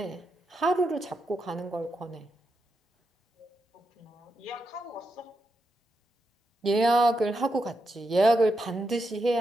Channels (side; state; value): both; normal; correlation 0.85